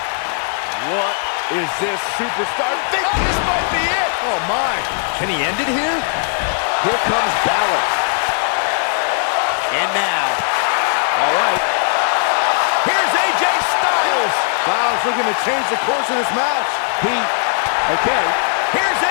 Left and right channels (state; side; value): silent; right; digital silence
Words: What is this superstar? This might be it! Oh, my. Can he end it here? Here comes Balor. And now, all right. Here's AJ Styles. Styles looking to change the course of this match. Okay. Here's